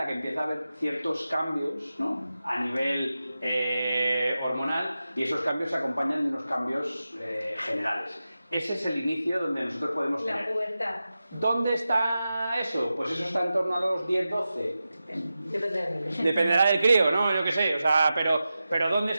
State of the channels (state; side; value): inverted; both; correlation -0.93